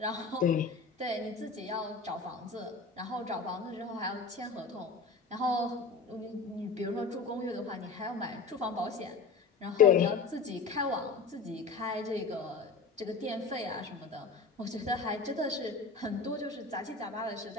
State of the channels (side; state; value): right; quieter; 4.6 dB